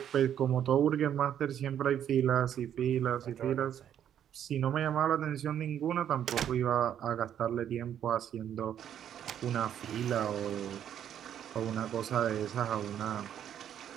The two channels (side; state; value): left; quieter; 9.8 dB